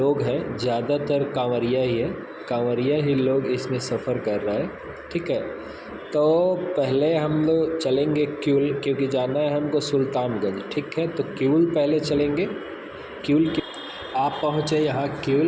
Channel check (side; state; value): both; identical; correlation 1.00